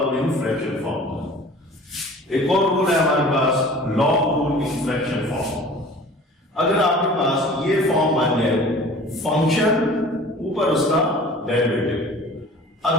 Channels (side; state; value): both; normal; correlation 0.45